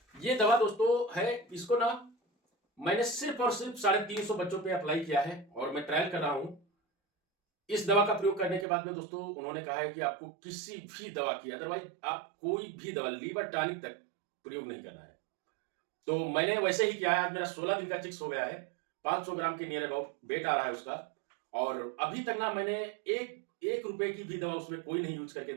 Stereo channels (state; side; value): drops out; left; at 8.7 s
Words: ये दवा दोस्तों है, इसको ना मैंने सिर्फ और सिर्फ 350 बच्चों पे अप्लाई किया है और मैं ट्रायल कर रहा हूं। इस दवा का प्रयोग करने के बाद में दोस्तों उन्होंने कहा है कि आपको किसी भी दवा की, अदरवाइज आप कोई भी दवा लीवर टॉनिक तक प्रयोग नहीं करना है। तो मैंने वैसे ही किया है। आज मेरा 16 दिन का चिक्स हो गया है, 500 ग्राम के नियर अबाउट वेट आ रहा है उसका, और अभी तक ना मैंने एक रुपए की भी दवा उसमें कोई नहीं यूज करके